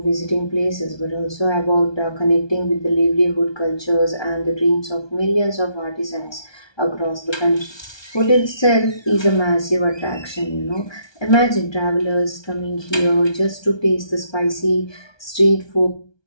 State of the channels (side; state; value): right; late; 1.2 ms